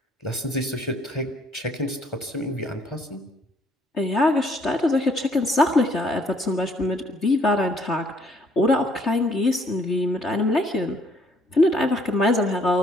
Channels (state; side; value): normal; both; correlation 0.64